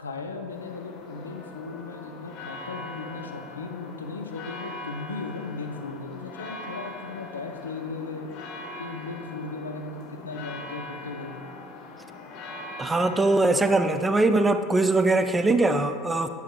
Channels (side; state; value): both; normal; correlation 0.68